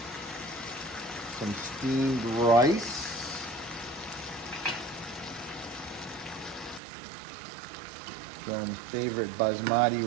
some steamed rice. Some favorite basmati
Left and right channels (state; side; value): drops out; left; at 6.8 s